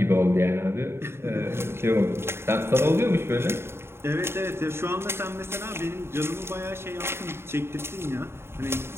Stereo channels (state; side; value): late; left; 0.12 ms